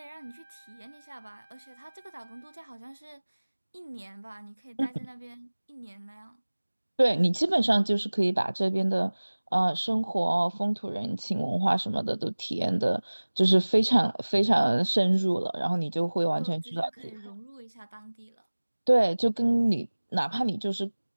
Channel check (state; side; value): inverted; both; correlation -1.00